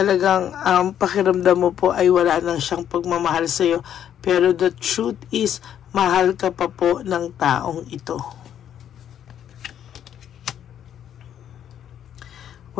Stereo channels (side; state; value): right; quieter; 9.9 dB